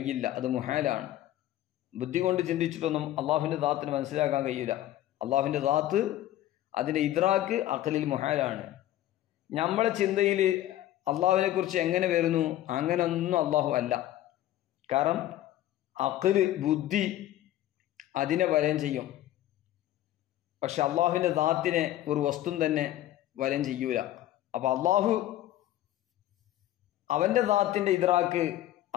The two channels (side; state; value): right; quieter; 13.6 dB